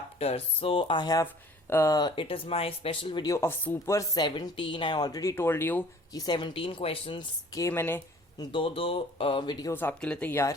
So I have it is my special video of Super 17. I already told you कि 17 questions के मैंने दो वीडियोस आपके लिए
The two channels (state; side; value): normal; both; correlation 0.51